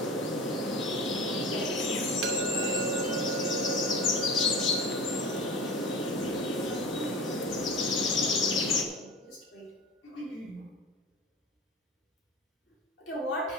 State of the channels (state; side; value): normal; both; correlation 0.33